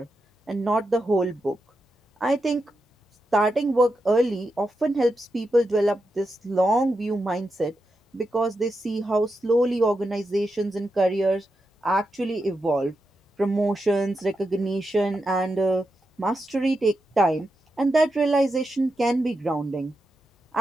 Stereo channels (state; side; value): normal; both; correlation 0.87